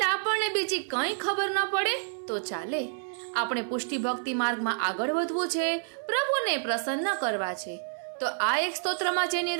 આપણને બીજી કંઈ ખબર ન પડે તો ચાલે. આપણે પુષ્ટિ ભક્તિ માર્ગમાં આગળ વધવું છે, પ્રભુને પ્રસન્ન કરવા છે. તો આ એક સ્તોત્રમાં જે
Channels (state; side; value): silent; left; 59 dB below the other